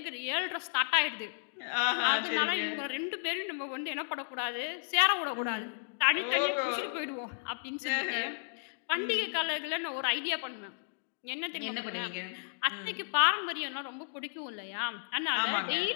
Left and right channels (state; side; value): silent; right; digital silence